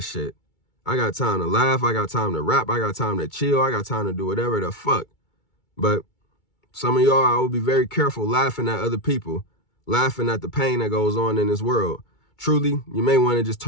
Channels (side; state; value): right; late; 2.3 ms